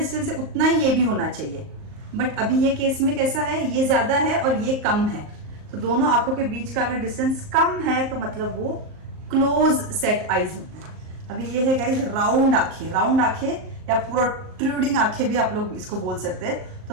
है उतना ही ये भी होना चाहिए। बट अभी ये केस में कैसा है? ये ज्यादा है और ये कम है। तो दोनों आंखों के बीच का अगर डिस्टेंस कम है तो मतलब वो क्लोज सेट आईज होता है। अभी ये है गाइस राउंड आंखें। राउंड आंखें या प्रोट्रूडिंग आंखें भी आप लोग इसको बोल सकते हैं।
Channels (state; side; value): late; left; 38 ms